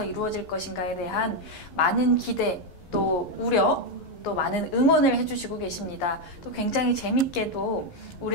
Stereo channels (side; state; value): right; late; 11 ms